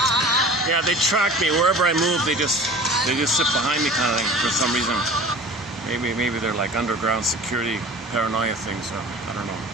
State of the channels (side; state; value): both; normal; correlation 0.41